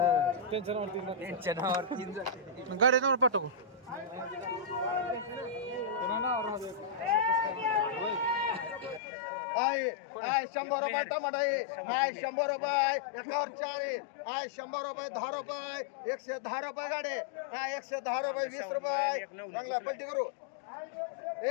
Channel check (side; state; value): right; drops out; at 9.0 s